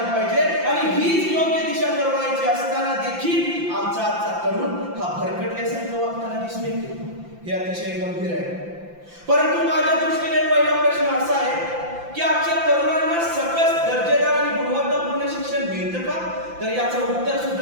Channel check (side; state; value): left; late; 5.8 ms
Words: पाहिजे. आणि हीच योग्य दिशा तरुणाईची असताना देखील आमचा आजचा तरुण हा भरकटल्यासारखं वागताना दिसून येतो. हे अतिशय गंभीर आहे. परंतु माझ्या दृष्टीने पहिला प्रश्न असा आहे की आजच्या तरुणांना सकस दर्जेदार आणि गुणवत्तापूर्ण शिक्षण मिळतं का? तर याचं उत्तर